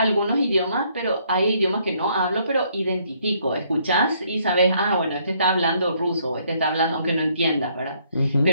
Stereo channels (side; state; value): both; inverted; correlation -0.68